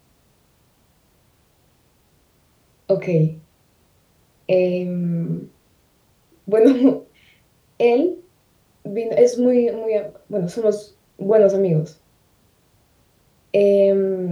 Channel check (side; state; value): both; identical; correlation 1.00